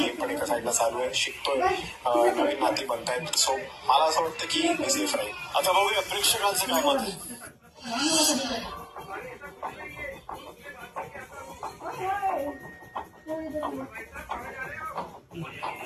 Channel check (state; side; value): identical; both; correlation 1.00